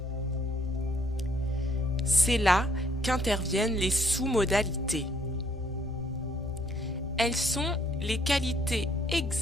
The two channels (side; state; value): both; normal; correlation 0.65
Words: C'est là qu'interviennent les sous-modalités. Elles sont les qualités